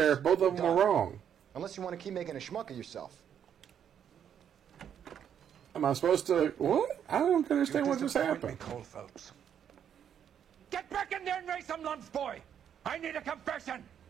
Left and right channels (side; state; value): left; quieter; 8.9 dB